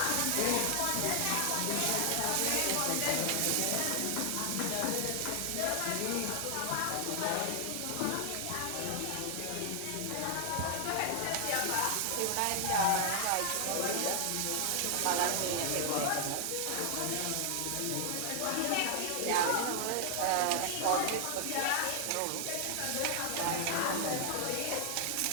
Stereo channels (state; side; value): different; both; correlation 0.00